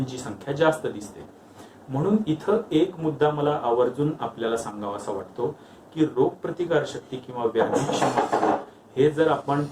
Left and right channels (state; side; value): identical; both; correlation 1.00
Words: संख्या जास्त दिसते. म्हणून इथं एक मुद्दा मला आवर्जून आपल्याला सांगावासा वाटतो की रोगप्रतिकार शक्ती किंवा व्याधी क्षमत्व हे जर आपण